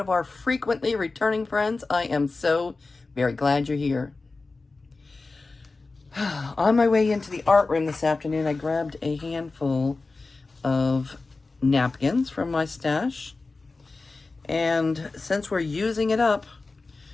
our frequently returning friends, I am so very glad you're here. On my way into the art room this afternoon, I grabbed a handful of napkins from my stash. And since we're using it up,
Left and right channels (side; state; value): right; quieter; 3.7 dB